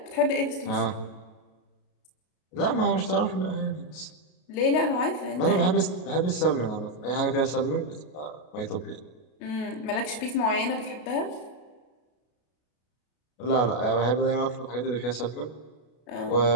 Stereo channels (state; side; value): late; right; 33 ms